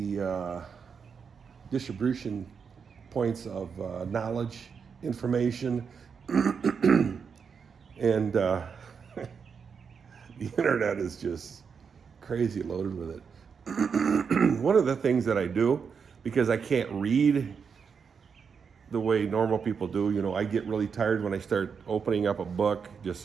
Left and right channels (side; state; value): left; quieter; 6.2 dB